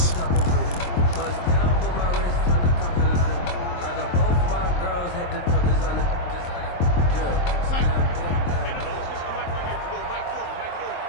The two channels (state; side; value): late; right; 23 ms